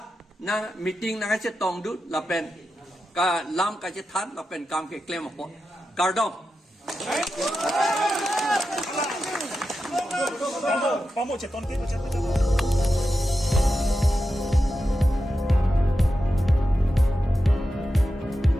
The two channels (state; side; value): normal; both; correlation 0.90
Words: na meeting na kache tongdu lapen ka lam kache than lapen kam ke claim apo kardom Vamos cheton ke